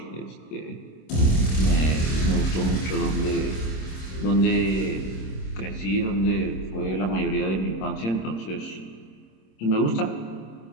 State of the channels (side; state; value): right; late; 26 ms